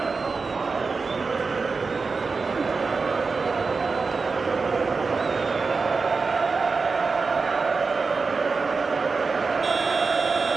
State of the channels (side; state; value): left; quieter; 4.5 dB